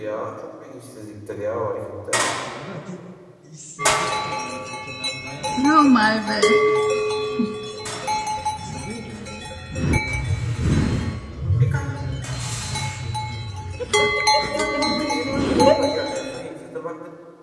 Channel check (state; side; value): identical; both; correlation 1.00